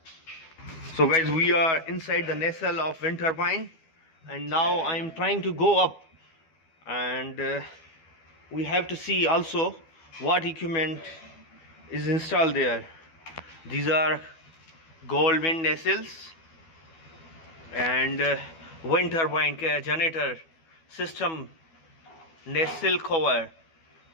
So guys, we are inside the nacelle of wind turbine, and now I am trying to go up, and we have to see also what equipment is installed there. These are Goldwind nacelles and wind turbine generator system, nacelle cover,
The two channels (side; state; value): right; late; 12 ms